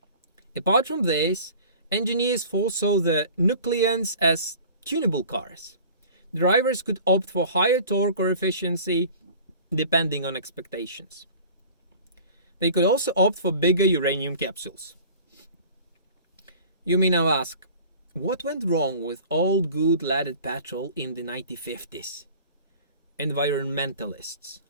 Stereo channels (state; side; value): inverted; both; correlation -0.44